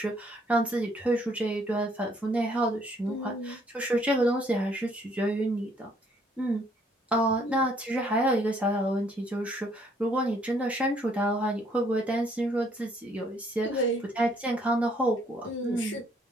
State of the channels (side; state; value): both; normal; correlation 0.65